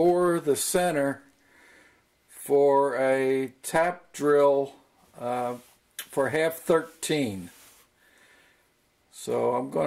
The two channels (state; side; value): identical; both; correlation 1.00